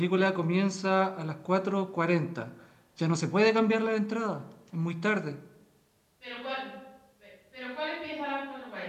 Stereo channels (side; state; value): both; identical; correlation 1.00